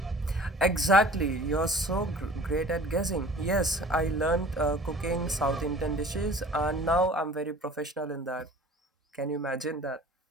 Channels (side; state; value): both; normal; correlation 0.46